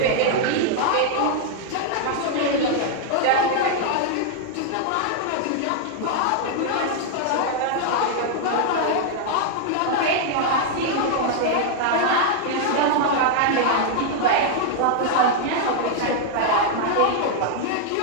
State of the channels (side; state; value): both; different; correlation 0.00